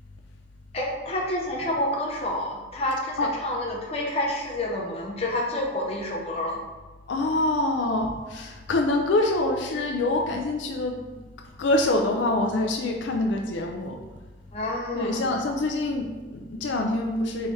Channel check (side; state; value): both; normal; correlation 0.14